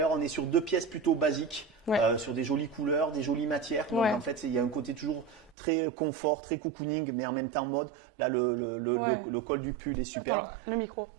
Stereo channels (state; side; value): drops out; left; at 5.6 s